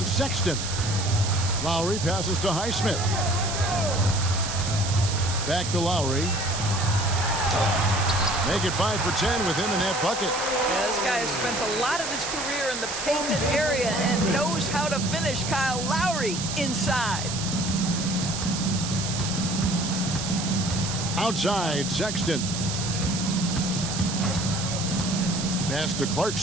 Sexton. Lowry passes to Highsmith. Back to Lowry. Make it 5 for 10 with him in that bucket. Yeah, this guy has spent a lot of his career in the painted area and knows how to finish. Kyle Lowry inside. Outside, Sexton. Pass to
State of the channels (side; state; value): right; noise; hiss, 5 dB below the sound